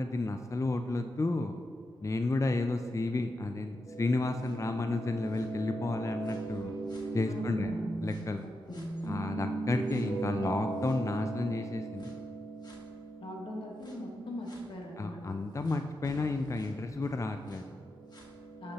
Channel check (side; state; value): both; normal; correlation 0.87